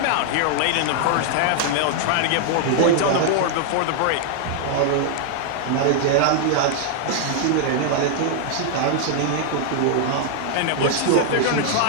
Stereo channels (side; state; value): both; different; correlation -0.01